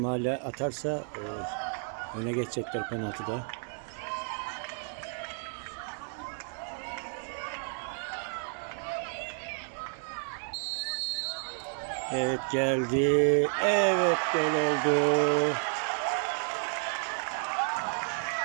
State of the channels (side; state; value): left; silent; 57 dB below the other